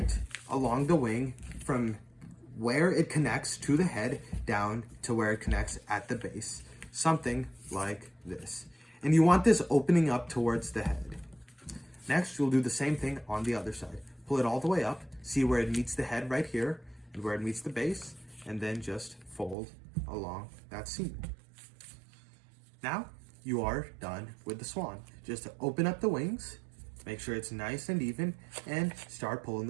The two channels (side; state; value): left; drops out; at 19.6 s